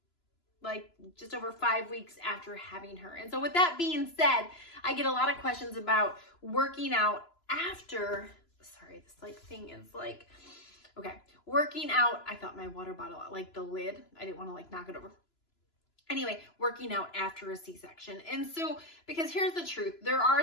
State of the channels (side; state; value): right; late; 3.0 ms